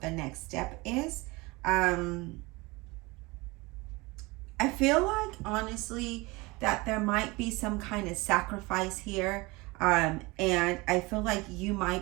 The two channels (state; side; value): quieter; left; 24.0 dB